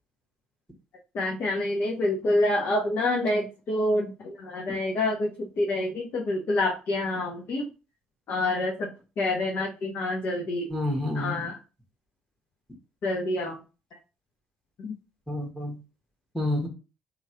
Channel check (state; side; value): normal; both; correlation 0.69